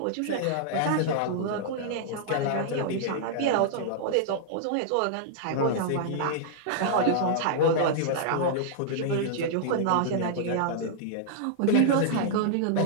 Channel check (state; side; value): different; both; correlation -0.01